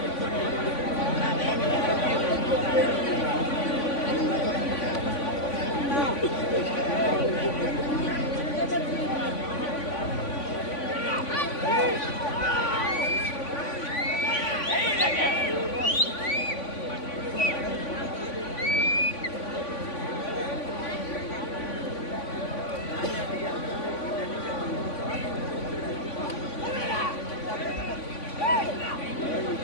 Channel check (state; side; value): late; right; 3.5 ms